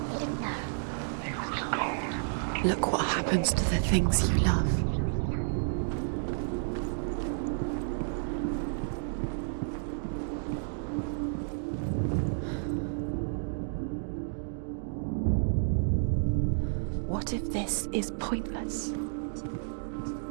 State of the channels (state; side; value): silent; left; digital silence